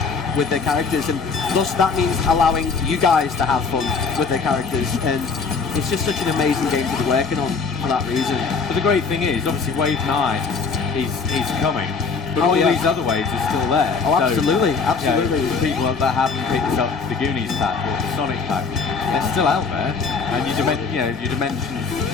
with their characters, and thus that means allowing you guys to have fun with their characters. And it's just such an amazing game to be working on for that reason. But the great thing is, obviously, Wave 9 is coming. But Oh, all yeah. these other waves are still there. Oh, So, absolutely, you know, absolutely. the people that haven't picked up the Goonies pack or the Sonic pack, they're still out there, and your dimension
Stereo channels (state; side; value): quieter; right; 4.9 dB